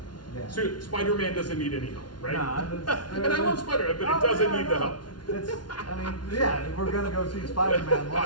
Yeah. So Spider-Man doesn't need any help, right? No, and I love Spider-Man, but it doesn't need the help. We're gonna go see Spider-Man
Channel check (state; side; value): late; right; 0.70 ms